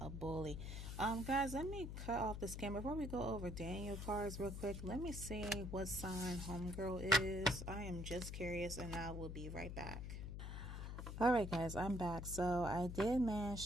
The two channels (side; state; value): left; noise; hum, 6 dB below the sound